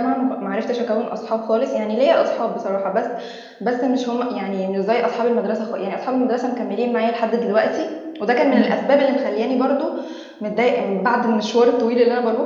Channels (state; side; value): identical; both; correlation 1.00